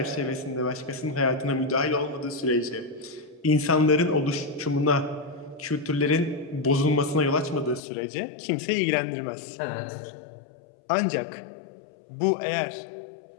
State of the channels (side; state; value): right; drops out; at 7.8 s